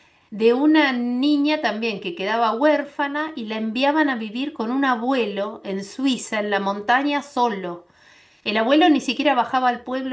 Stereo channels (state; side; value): identical; both; correlation 1.00